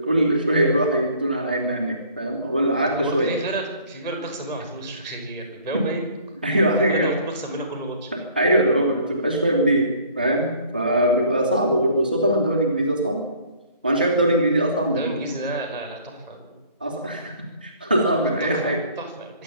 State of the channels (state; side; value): inverted; both; correlation -0.54